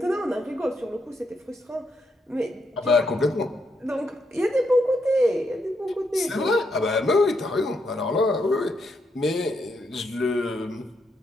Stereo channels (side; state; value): both; normal; correlation 0.79